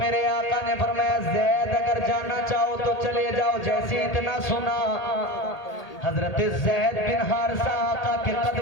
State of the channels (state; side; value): late; right; 1.8 ms